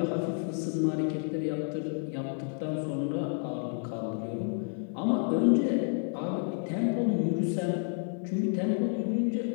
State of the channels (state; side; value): silent; right; 58 dB below the other